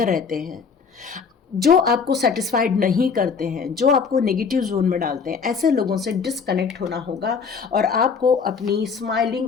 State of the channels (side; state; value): right; quieter; 5.7 dB